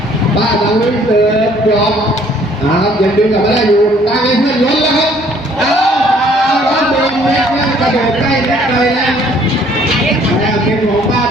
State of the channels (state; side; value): normal; both; correlation 0.60